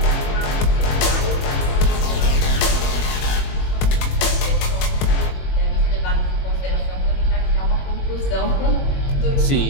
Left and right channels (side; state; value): right; late; 21 ms